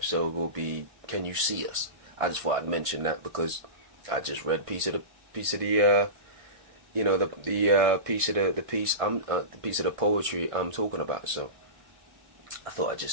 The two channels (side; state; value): left; late; 1.5 ms